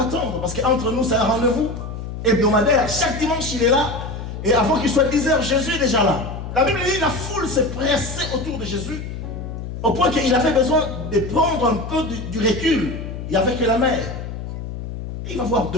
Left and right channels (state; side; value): noise; left; hum, 8 dB below the sound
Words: parce qu'entre nous, c'est un rendez-vous hebdomadaire. Chaque dimanche, il est là, et avant qu'il soit 10 heures, Jésus est déjà là. La Bible dit, la foule s'est pressée autour de Jésus, au point qu'il avait besoin de prendre un peu du recul. Il n'y avait que la mer. Il va voir